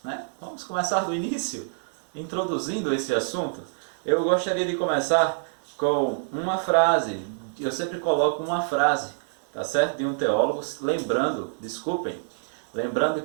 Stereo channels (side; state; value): left; silent; digital silence